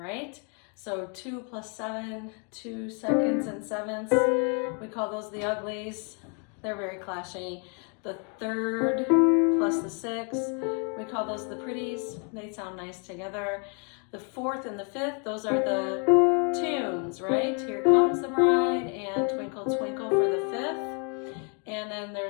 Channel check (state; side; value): quieter; right; 38.4 dB